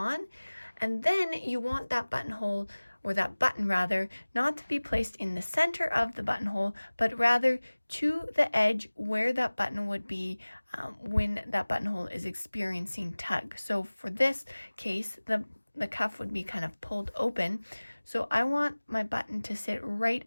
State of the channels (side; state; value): both; inverted; correlation -1.00